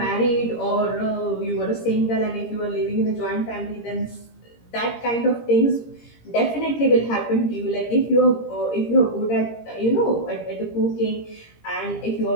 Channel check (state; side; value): late; right; 17 ms